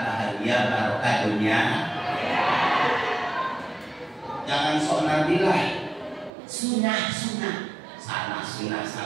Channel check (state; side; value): drops out; left; at 6.3 s